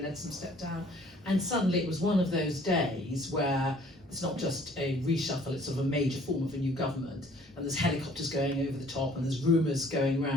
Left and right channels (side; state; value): both; normal; correlation 0.57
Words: Leadsom stepped down, and suddenly it was one of those days where it's not just a reshuffle, it's sort of a major form of a new government, and there's helicopters going over the top and there's rumours going